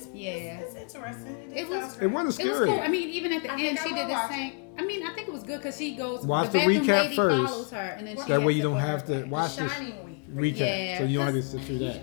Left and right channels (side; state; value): right; quieter; 38.5 dB